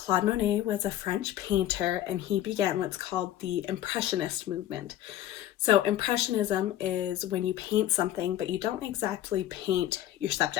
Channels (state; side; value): quieter; right; 13.0 dB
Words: Monet was a French painter, and he began what's called the Impressionist movement. So Impressionism is when you paint something, but you don't exactly paint your